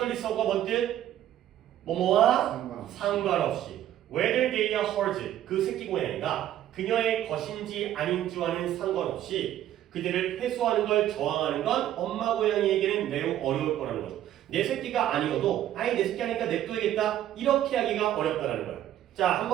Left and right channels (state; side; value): quieter; left; 12.1 dB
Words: 뭔 뜻? 뭐뭐와 상관없이 whether they are hers 그 새끼 고양이가 그녀의 것인지 아닌지와는 상관없이 그들을 회수하는 걸 저항하는 건 엄마 고양이에게는 매우 어려울 거라는 거죠. 내 새끼가 아니어도 아니 내 새끼 하니까 냅둬야겠다 이렇게 하기가 어렵다라는 거예요. 자, 한